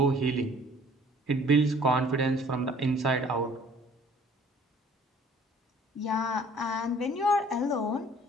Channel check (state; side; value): normal; both; correlation 0.54